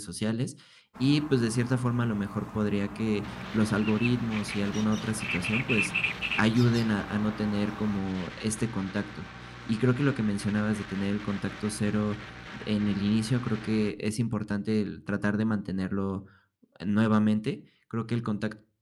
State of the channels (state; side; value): identical; both; correlation 1.00